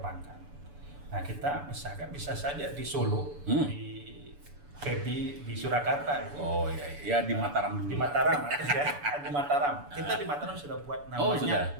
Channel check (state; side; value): late; left; 6.9 ms